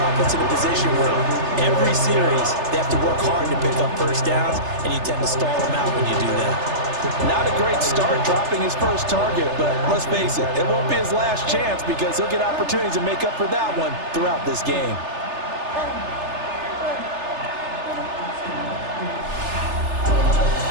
in a position where every series they have to work hard to pick up first downs, and you tend to stall them out when you do that. Not a great start dropping his first target, but let's face it, it won't be his last chance because he'll get opportunities to make up for that one throughout this game.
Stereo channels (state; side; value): late; left; 3.3 ms